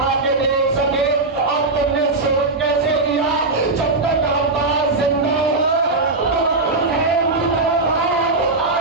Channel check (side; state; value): left; quieter; 3.3 dB